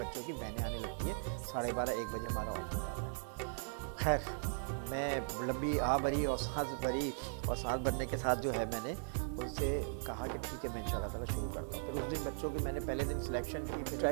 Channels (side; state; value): left; silent; digital silence